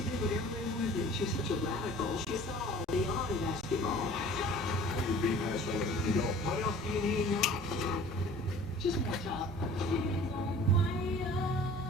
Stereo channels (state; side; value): normal; both; correlation 0.47